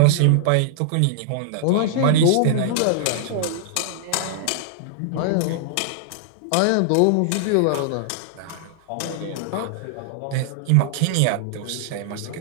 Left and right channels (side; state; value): both; different; correlation -0.01